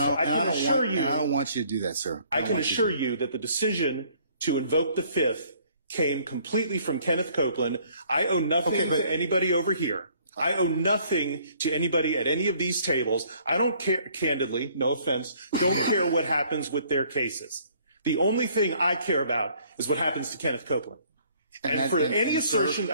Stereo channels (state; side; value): inverted; both; correlation -0.61